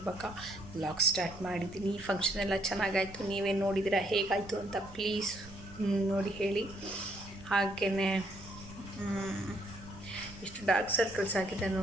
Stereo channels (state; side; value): noise; right; rumble, 19 dB below the sound